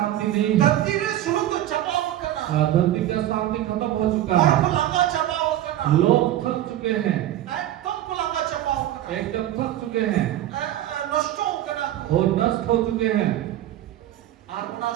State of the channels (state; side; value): quieter; left; 13.0 dB